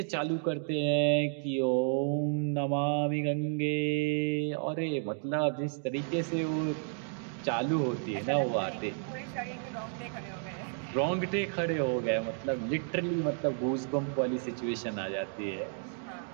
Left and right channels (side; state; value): left; silent; 56 dB below the other